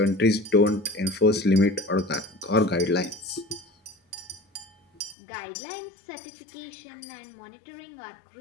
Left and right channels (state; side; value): drops out; right; at 5.2 s